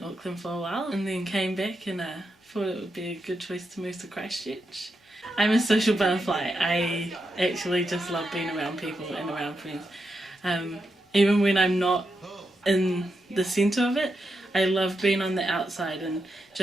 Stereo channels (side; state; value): both; normal; correlation 0.85